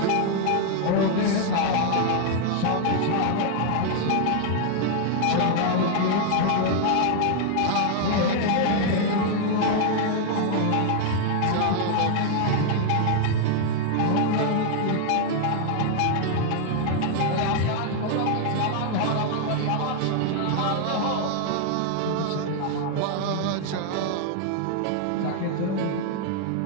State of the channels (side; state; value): both; different; correlation 0.00